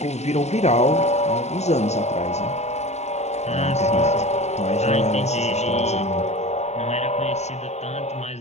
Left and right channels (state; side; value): late; right; 0.32 ms